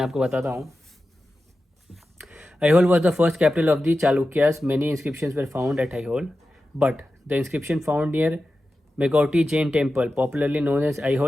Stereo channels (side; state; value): both; normal; correlation 0.92